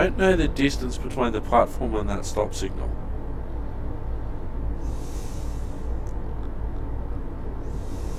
know the distance between the platform and that stop signal.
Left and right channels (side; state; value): both; identical; correlation 1.00